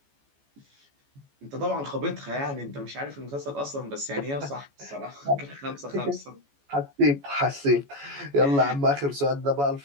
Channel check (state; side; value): late; left; 14 ms